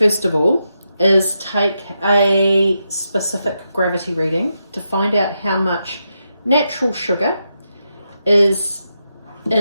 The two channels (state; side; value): inverted; both; correlation -0.85